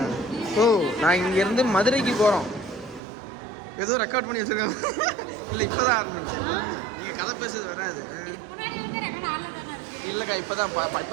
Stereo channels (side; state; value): left; drops out; at 3.0 s